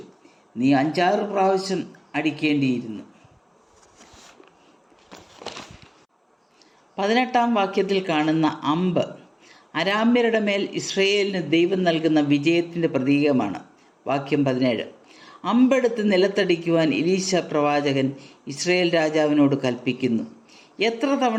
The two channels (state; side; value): identical; both; correlation 1.00